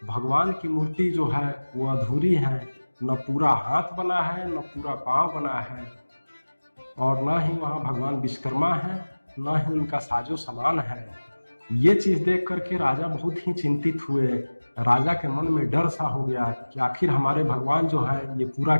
भगवान की मूर्ति जो है वो अधूरी है। न पूरा हाथ बना है, न पूरा पांव बना है, और न ही वहाँ भगवान विश्वकर्मा है, न ही उनका साजो सामान है। ये चीज देख करके राजा बहुत ही चिंतित हुए। राजा के मन में डर सा हो गया कि आखिर हमारे भगवान जो है ये पूरा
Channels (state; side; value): inverted; both; correlation -1.00